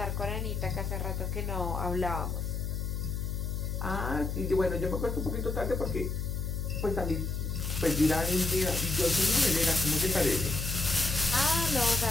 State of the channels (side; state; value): left; noise; hum, 2 dB below the sound